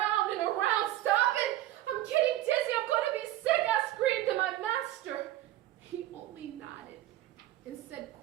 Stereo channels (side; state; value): left; quieter; 14.5 dB